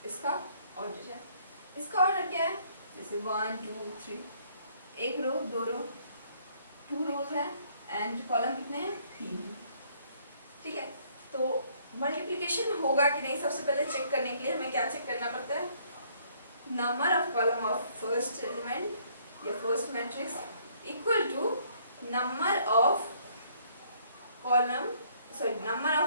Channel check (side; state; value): both; inverted; correlation -0.64